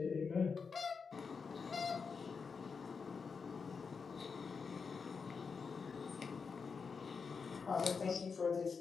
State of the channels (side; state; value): right; quieter; 5.4 dB